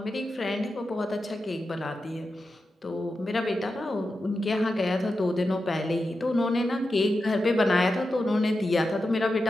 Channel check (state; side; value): normal; both; correlation 0.90